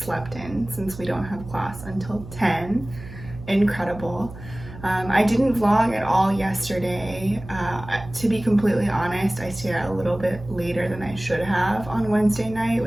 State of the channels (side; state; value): right; noise; hum, 14 dB below the sound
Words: in since we don't have class until 10. Incredible. I didn't vlog at all yesterday. To be completely honest, I stayed out a little bit later than I should have on Wednesday night